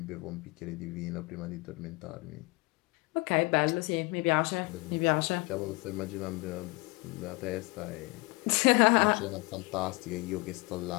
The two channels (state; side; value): quieter; right; 25.3 dB